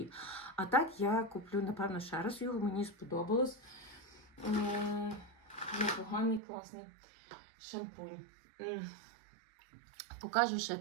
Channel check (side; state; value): left; drops out; at 6.4 s